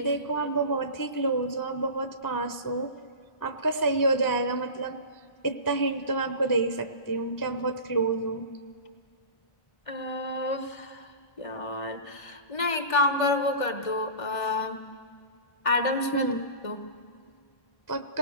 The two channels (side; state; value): right; late; 1.5 ms